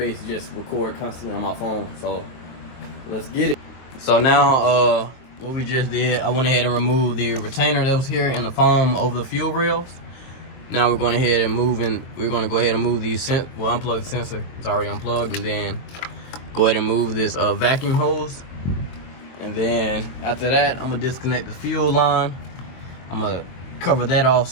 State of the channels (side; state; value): right; late; 23 ms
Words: to just record constantly on my phone. So let's get it. So now what we just did, I went ahead and removed the retainer that was here in the foam over the fuel rails. Now we're going ahead and move these unplug the sensor. It's already unplugged, and then go ahead and move this vacuum hose. And then after that, I'm gonna disconnect the fuel line. I'm gonna cover that off